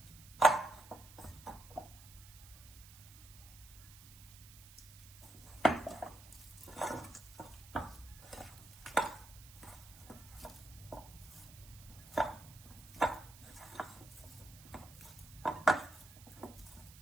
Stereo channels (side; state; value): right; noise; hiss, 18 dB below the sound